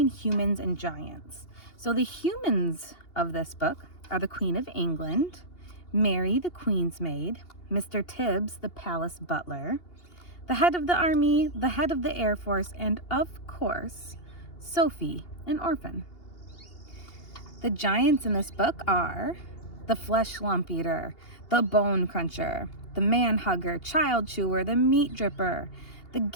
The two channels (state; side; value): late; right; 2.8 ms